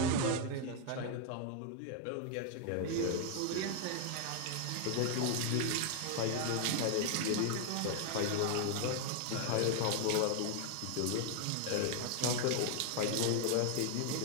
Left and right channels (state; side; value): different; both; correlation 0.00